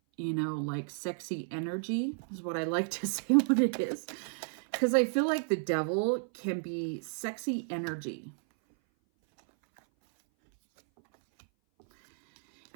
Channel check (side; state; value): left; silent; 56 dB below the other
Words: you know, like sexy energy is what I like to say what it is. Because I feel like the devil can be sexy energy.